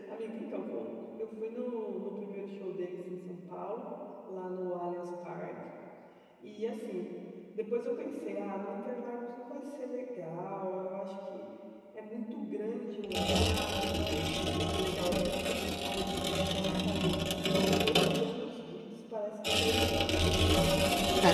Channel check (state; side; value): identical; both; correlation 1.00